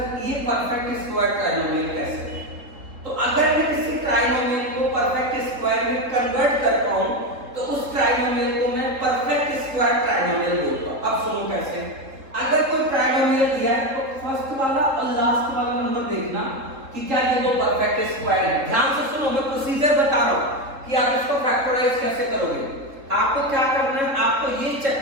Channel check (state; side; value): late; left; 3.7 ms